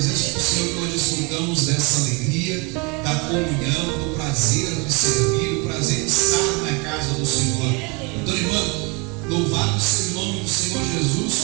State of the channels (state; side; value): quieter; left; 30.1 dB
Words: do Senhor que nós desfrutamos dessa alegria, da comunhão, do prazer de servir, do prazer de estar na casa do Senhor. Então, irmão, louvado seja o nome do Senhor Jesus,